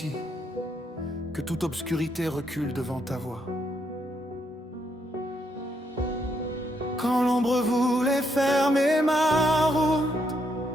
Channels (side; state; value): both; normal; correlation 0.76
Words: que toute obscurité recule devant ta voix. Quand l'ombre voulait fermer ma route,